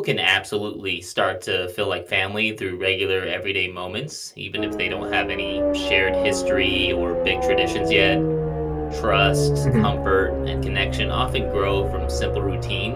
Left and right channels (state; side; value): identical; both; correlation 1.00